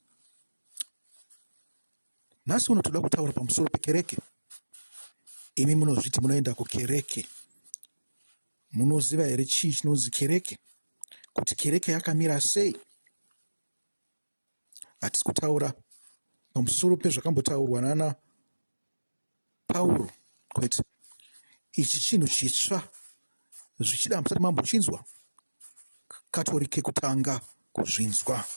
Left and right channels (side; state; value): both; inverted; correlation -1.00